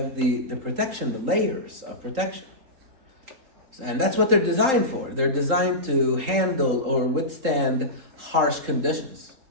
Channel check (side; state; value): left; late; 3.8 ms